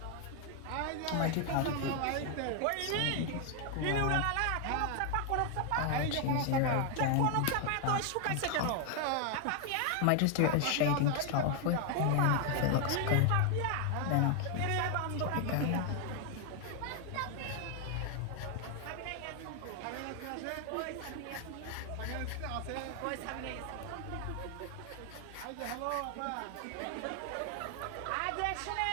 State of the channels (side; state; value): both; different; correlation 0.00